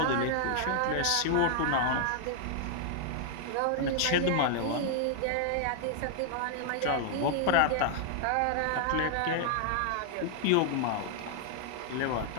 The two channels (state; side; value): different; both; correlation 0.00